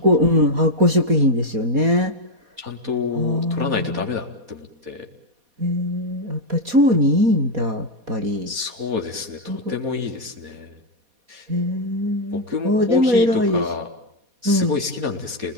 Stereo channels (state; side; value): late; left; 4.2 ms